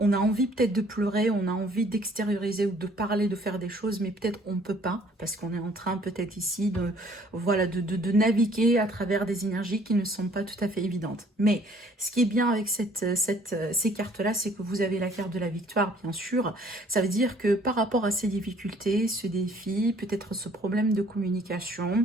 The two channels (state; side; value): normal; both; correlation 0.58